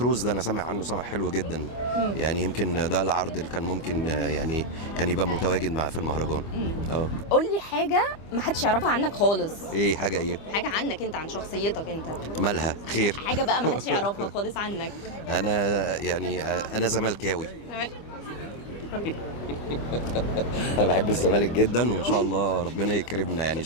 ده انا سامع عنه سامع حلو جدا. يعني يمكن ده العرض اللي كان ممكن يعني كان يبقى متواجد مع في المهرجان. قول لي حاجه ما حدش يعرفها عنك خالص. ايه حاجه ايه؟ حاجه عنك انت، عن شخصيتك انت. مالها خير؟ حاجه بقى ما حدش يعرفها خالص عنك. انا يعني انا زملكاوي. انا بحب الزمالك جدا، وان شاء الله ربنا يكرمنا يعني ان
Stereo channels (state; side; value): late; right; 25 ms